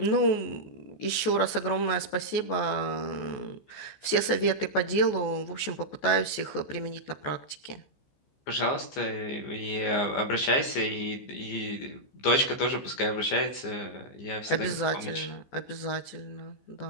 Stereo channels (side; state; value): right; late; 14 ms